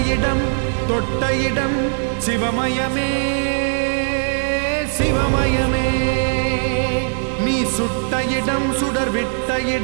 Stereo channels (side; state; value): left; silent; digital silence